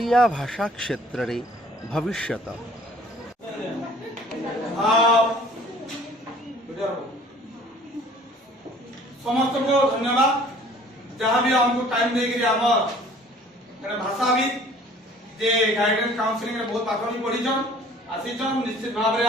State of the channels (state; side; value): normal; both; correlation 0.52